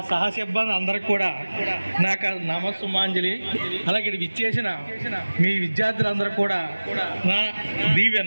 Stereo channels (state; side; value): inverted; both; correlation -1.00